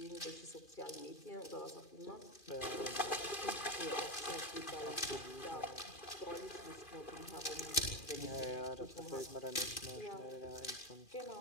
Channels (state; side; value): late; right; 2.4 ms